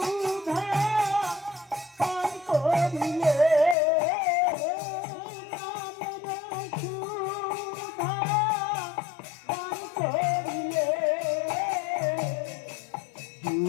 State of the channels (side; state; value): right; drops out; at 3.8 s